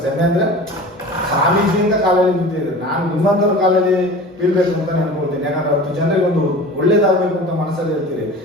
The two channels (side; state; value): both; normal; correlation 0.38